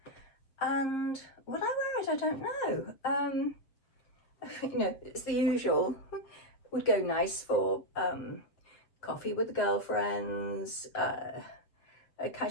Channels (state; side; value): late; right; 7.5 ms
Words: And would I wear it? I don't know. You know, it's the usual. Would go nice for coffee with the girlfriends, a